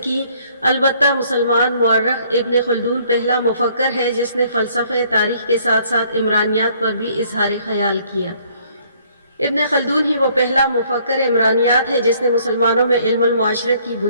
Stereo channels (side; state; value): both; inverted; correlation -0.62